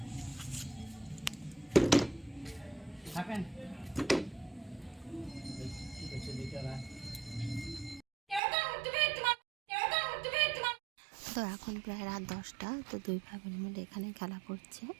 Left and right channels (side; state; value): left; drops out; at 8.4 s